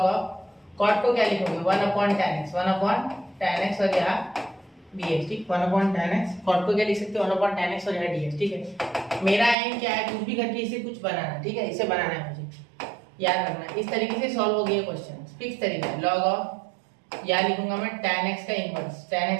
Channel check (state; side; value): drops out; left; at 9.6 s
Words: ऑफ cot को क्या लिखोगे 1 upon tan x, 1 upon tan x और यहाँ dx, ठीक, 1 अपॉन tan x, cot को क्या लिख सकते हो 1 अपॉन tan x और यहाँ dx, ठीक है। मेरा एम क्या है, कुछ भी करके इसे कुछ बनाना, ठीक है, इसे बनाना है मुझे, याद रखना। इस तरीके से सॉल्व हो गया क्वेश्चन, फिक्स तरीका, log ऑफ या लिखूंगा मैं tan x का इनवर्स, tan